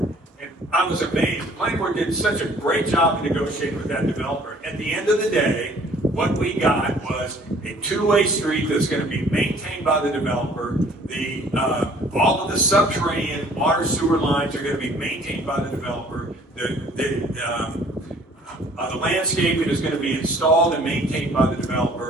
and I was amazed. The planning board did such a great job of negotiating with that developer. At the end of the day, what we got was a two-way street that's going to be maintained by the developer. All of the subterranean water sewer lines are going to be maintained by the developer. The landscaping is going to be installed and maintained by the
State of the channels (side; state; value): both; normal; correlation 0.55